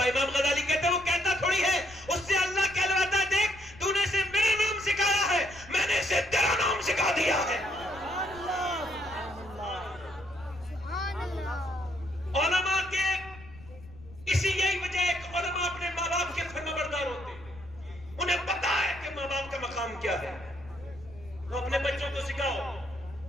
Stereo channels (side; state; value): left; noise; rumble, 19 dB below the sound